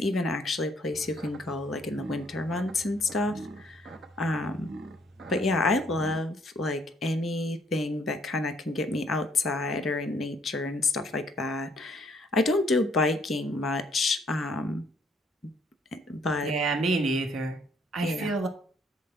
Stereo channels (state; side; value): normal; both; correlation 0.66